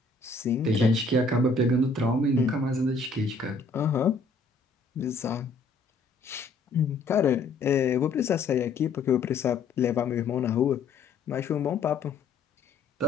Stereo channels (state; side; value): quieter; right; 3.9 dB